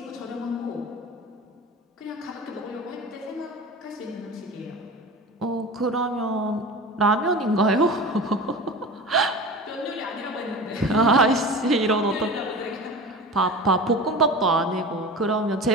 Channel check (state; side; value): normal; both; correlation 0.33